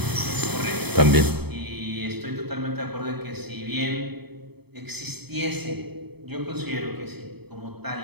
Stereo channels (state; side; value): late; left; 0.97 ms